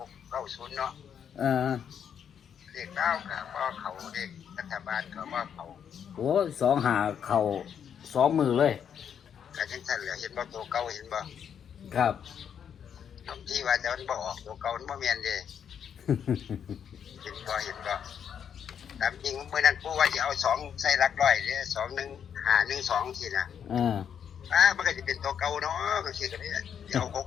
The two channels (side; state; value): right; quieter; 8.2 dB